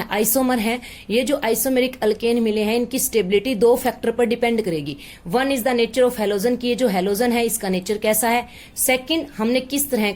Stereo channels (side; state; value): both; identical; correlation 1.00